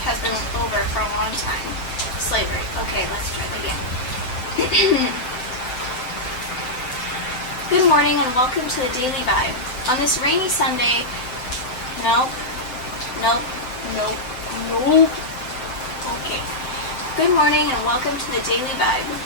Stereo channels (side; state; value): right; late; 7.8 ms